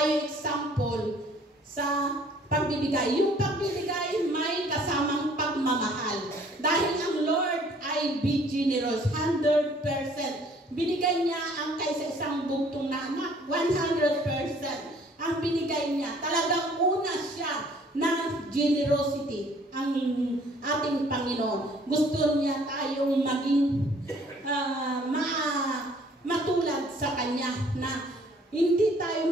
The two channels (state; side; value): normal; both; correlation 0.57